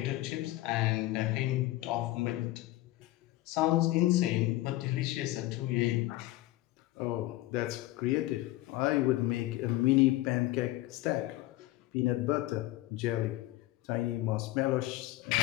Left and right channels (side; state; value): right; quieter; 17.2 dB